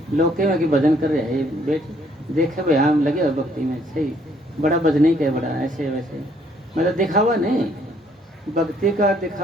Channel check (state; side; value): normal; both; correlation 0.65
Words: लोग के में कि भजन कर रहे हैं, बैठ देखे भाई हम लगे हुए भक्ति में, सही बड़ा भजन ही क्या बड़ा ऐसे वैसे, मतलब दिखावा नहीं। भक्ति का